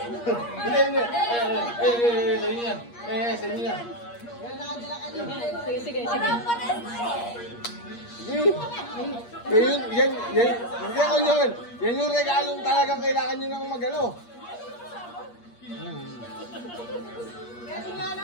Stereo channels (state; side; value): late; right; 8.5 ms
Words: Hindi, hindi. Sa inyo yan. Sa inyo yan. Sige, sige, sige. Sige. Hindi ako yun. Yan yung regalong talagang kailangan nyo nang magalo.